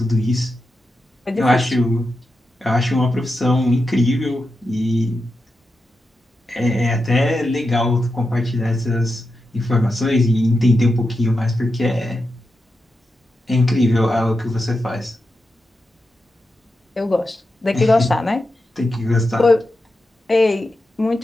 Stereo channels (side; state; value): both; normal; correlation 0.89